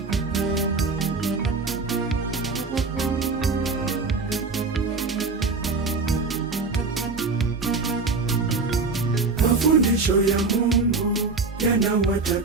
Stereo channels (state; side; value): quieter; left; 4.1 dB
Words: Mafundisho ya Mungu